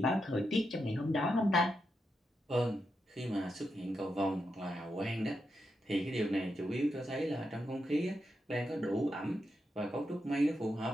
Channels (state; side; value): normal; both; correlation 0.85